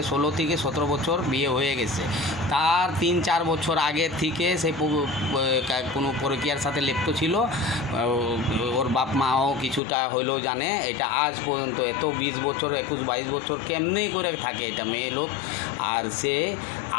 16 থেকে 17 বছর বিয়ে হয়ে গেছে। তার 3-4 বছর আগে থেকে সে কোনো পরকীয়ার সাথে লিপ্ত ছিল। ওর বাপ মাও কিছুটা হইলেও জানে। এটা আজ পর্যন্ত এত 20 বছর 21-22 বছর কেমনি করে থাকে এটা মেয়ে লোক। আর সে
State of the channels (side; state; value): right; drops out; at 9.8 s